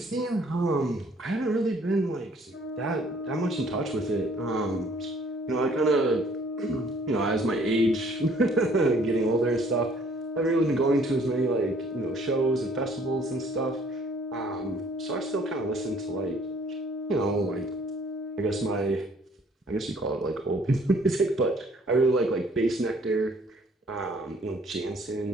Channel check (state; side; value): normal; both; correlation 0.59